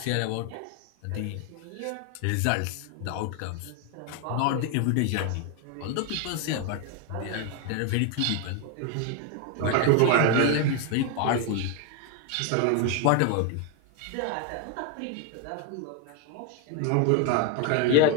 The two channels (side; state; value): both; different; correlation 0.01